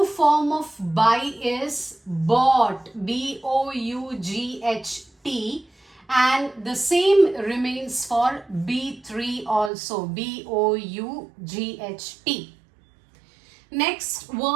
form of buy is bought, B-O-U-G-H-T, and the same remains for B3 also, B-O-U-G-H-T. Next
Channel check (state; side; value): drops out; left; at 9.7 s